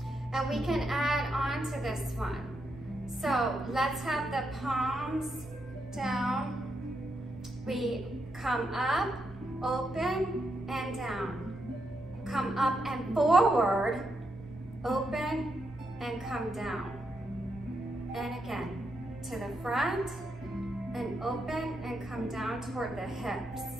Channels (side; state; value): both; normal; correlation 0.82